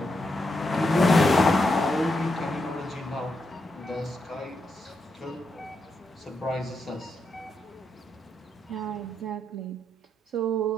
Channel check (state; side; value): normal; both; correlation 0.83